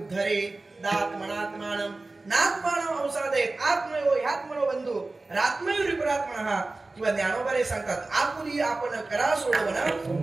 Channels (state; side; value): quieter; left; 3.2 dB